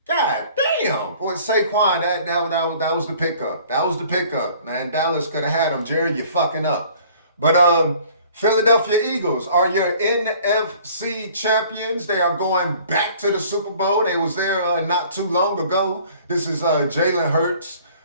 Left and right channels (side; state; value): both; inverted; correlation -0.53